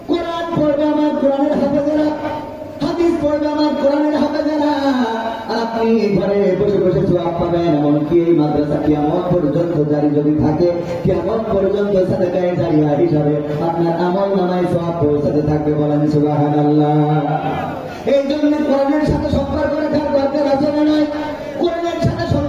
কোরআন পড়বে আমার কোরআনের হাফেজেরা, হাদিস পড়বে আমার কোরআনের হাফেজেরা, আর আপনি ঘরে বসে বসে সওয়াব পাবেন। এমনকি এই মাদ্রাসা কিয়ামত পর্যন্ত জারি যদি থাকে, কিয়ামত পর্যন্ত সাদাকায়ে জারিয়া হিসাবে আপনার আমল নামায় সওয়াব পৌঁছাতে থাকবে, বলেন সুবহানাল্লাহ। এই জন্য কোরআনের সাথে সম্পর্ক রাখার দরকার আছে না নয়? কোরআনের সাথে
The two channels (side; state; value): both; identical; correlation 1.00